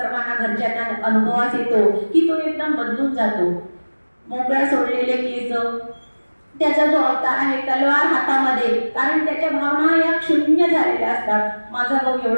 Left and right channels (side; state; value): both; inverted; correlation -1.00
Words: घरच्यांना अनुभवास येतो की तो एकदम बदलून जातो. मोकळ्या सोडलेले केस, त्याचा जो अवतार आहे तलवार हातामध्ये, कारण त्याच्या भावना या शून्य झालेल्या असतात. माझा भाऊ